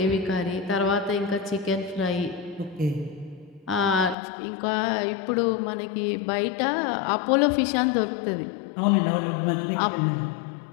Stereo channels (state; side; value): drops out; right; at 4.2 s